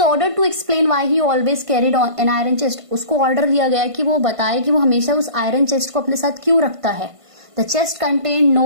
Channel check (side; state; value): left; late; 1.5 ms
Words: ordered to explain why he always carried an iron chest. उसको ऑर्डर दिया गया कि वो बताए कि वो हमेशा उस आयरन चेस्ट को अपने साथ क्यों रखता है. The chest contained